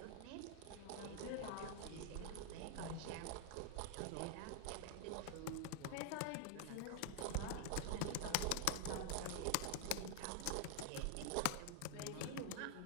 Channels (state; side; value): different; both; correlation 0.00